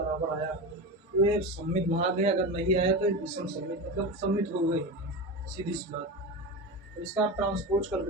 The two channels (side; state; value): both; normal; correlation 0.23